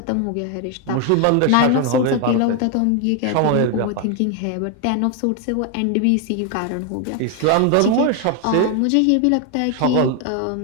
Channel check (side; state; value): both; different; correlation 0.01